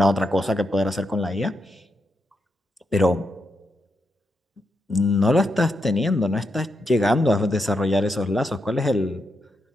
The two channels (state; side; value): normal; both; correlation 0.83